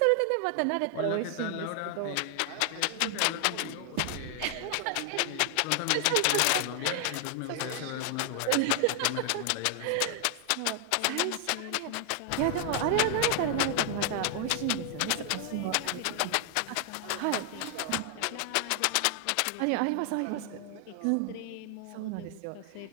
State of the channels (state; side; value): different; both; correlation 0.00